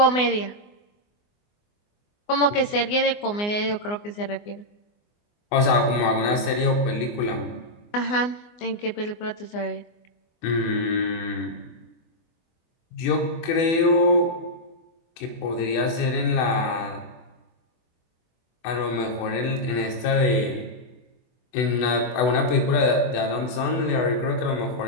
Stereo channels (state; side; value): late; right; 24 ms